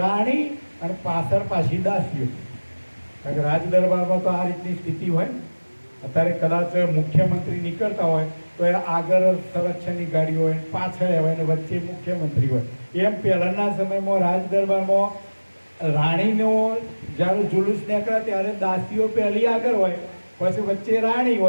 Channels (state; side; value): inverted; both; correlation -1.00